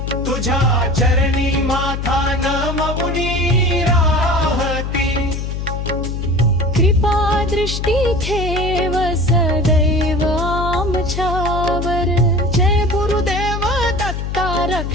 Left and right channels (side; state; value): left; noise; hum, 4 dB below the sound